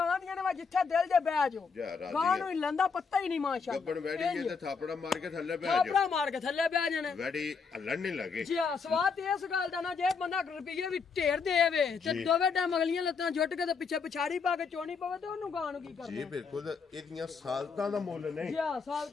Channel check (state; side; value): quieter; right; 5.4 dB